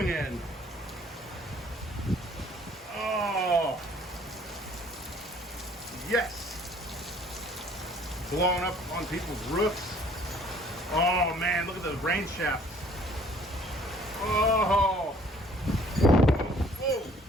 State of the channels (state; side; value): normal; both; correlation 0.57